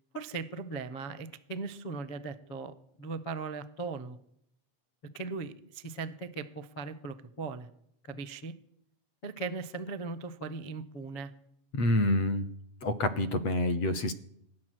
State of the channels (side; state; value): right; late; 8.0 ms